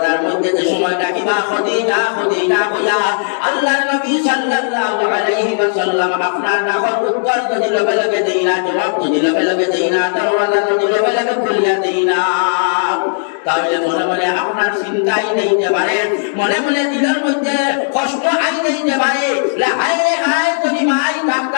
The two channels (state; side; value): silent; right; digital silence